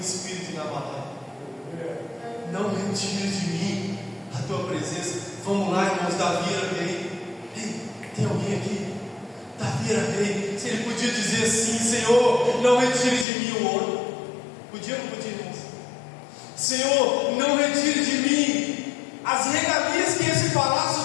inabalável. Não retire de mim a tua presença. Vamos lá, irmãos. Davi era rei. Ei, tem alguém aqui? Davi era rei. Se ele podia dizer assim: Senhor, não retire de mim o ouro. Podia ou não podia, irmãos? Senhor, não retire de mim as regalias que esse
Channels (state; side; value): drops out; right; at 13.2 s